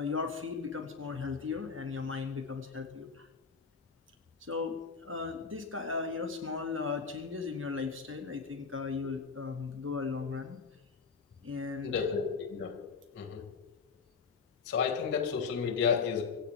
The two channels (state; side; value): quieter; right; 5.4 dB